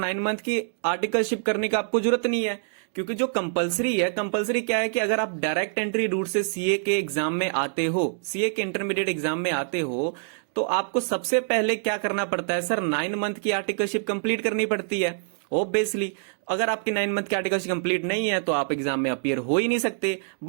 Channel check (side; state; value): left; silent; digital silence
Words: मंथ की आर्टिकलशिप करने का आपको जरूरत नहीं है, क्योंकि जो कंपलसरी क्या है कि अगर आप डायरेक्ट एंट्री रूट से सीए के एग्जाम में आते हो, सीए के इंटरमीडिएट एग्जाम में आते हो, तो आपको सबसे पहले क्या करना पड़ता है सर? 9 मंथ की आर्टिकलशिप कंप्लीट करनी पड़ती है ऑब्वियसली। अगर आपकी 9 मंथ की आर्टिकलशिप कंप्लीट नहीं है तो आप एग्जाम में अपीयर हो ही नहीं सकते।